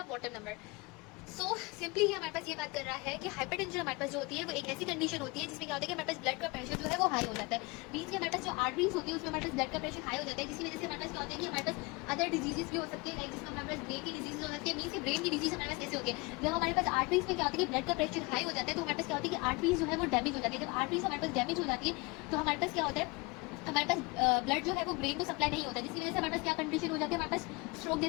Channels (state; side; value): quieter; right; 26.3 dB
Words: bottom number. So simply ही हमारे पास ये बात कर रहा है कि hypertension हमारे पास जो होती है वो एक ऐसी कंडीशन होती है जिसमें क्या होता है कि हमारे पास ब्लड का प्रेशर जो है वो हाई हो जाता है। मीन्स कि हमारे पास जो आर्टरीज होती है उसमें हमारे पास ब्लड का प्रेशर हाई हो जाता है, जिसकी वजह से हमारे पास क्या होता है कि हमारे पास अदर डिजीजेस भी हो सकती है, लाइक जिसमें हमारे पास ब्रेन की डिजीज हो सकती है। मीन्स ब्रेन की डिजीज हमारे पास कैसे होती है, जब हमारे पास आर्टरीज में क्या होता है कि ब्लड का प्रेशर हाई हो जाता है तो हमारे पास क्या होता है कि आर्टरीज जो है वो डैमेज हो जाती है। जब आर्टरीज हमारे पास डैमेज हो जाती है तो हमारे पास क्या होता है, हमारे पास ब्लड जो है वो ब्रेन को सप्लाई नहीं होता है, जिसकी वजह से हमारे पास क्या कंडीशन हो जाती है, हमारे पास स्ट्रोक